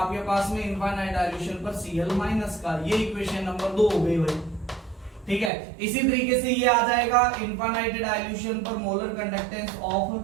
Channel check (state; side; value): drops out; left; at 5.5 s